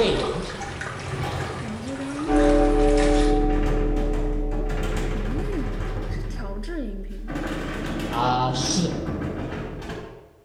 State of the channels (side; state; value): both; identical; correlation 1.00